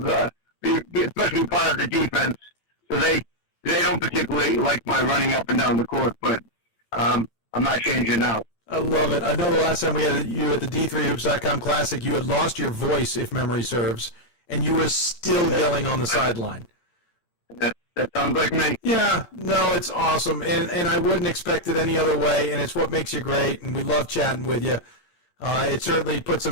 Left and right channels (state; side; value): late; right; 8.9 ms